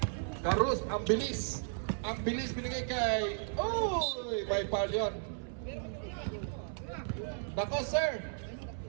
Carlos, ang bilis. Ang bilis binigay kay... Uy! May foul yun. Bako sir.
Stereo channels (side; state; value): left; silent; 55 dB below the other